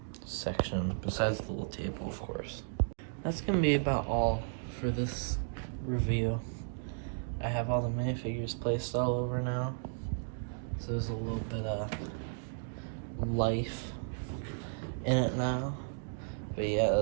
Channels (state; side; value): silent; left; digital silence